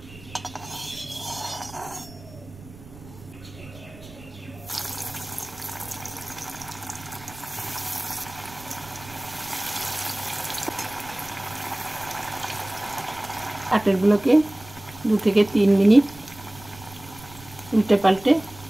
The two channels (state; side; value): noise; right; rumble, 19 dB below the sound